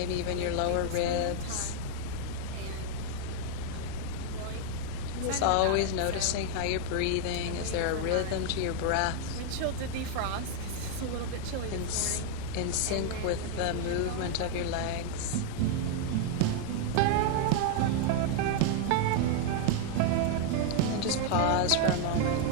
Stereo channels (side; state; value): both; different; correlation 0.01